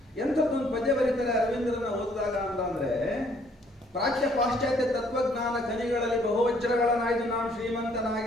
ಎಂಥದ್ದೊಂದು ಪದ್ಯ ಬರೀತಾರೆ ಅರವಿಂದರನ್ನ ಓದಿದಾಗ ಅಂದ್ರೆ, ಪ್ರಾಚ್ಯ ಪಾಶ್ಚಾತ್ಯ ತತ್ವಜ್ಞಾನ ಖನಿಗಳಲ್ಲಿ ಬಹುವಜ್ರಗಳನ್ನಾಯ್ದು ನಾವು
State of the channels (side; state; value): both; normal; correlation 0.64